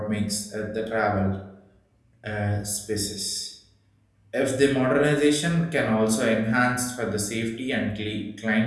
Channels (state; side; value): identical; both; correlation 1.00